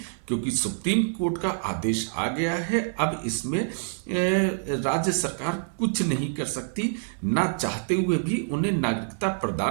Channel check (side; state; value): left; silent; 61 dB below the other